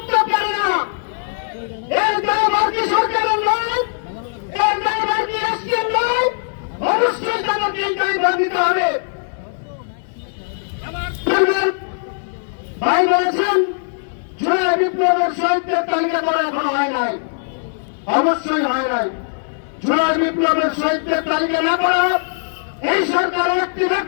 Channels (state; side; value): silent; right; digital silence